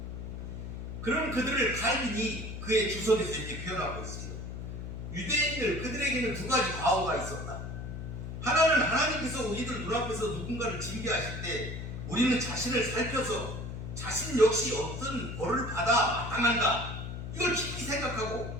그런 그들을 칼빈이 그의 주석에서 이렇게 표현하고 있어요. 유대인들 그들에게는 두 가지 과오가 있었다. 하나는 하나님께서 우리들 눈앞에서 누군가를 징계하실 때 우리는 자신을 살펴서 자신 역시 어떤 벌을 받아 마땅한가 이걸 깊이 생각하고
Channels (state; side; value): noise; left; hum, 7 dB below the sound